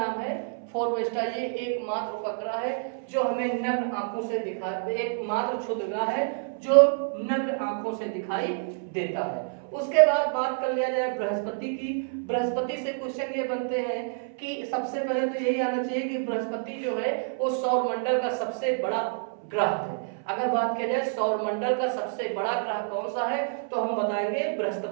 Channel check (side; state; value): left; silent; 59 dB below the other